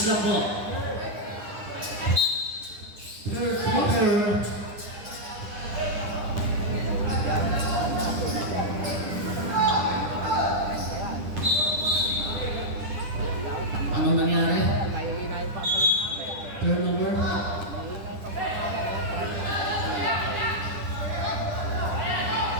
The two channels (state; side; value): late; left; 10 ms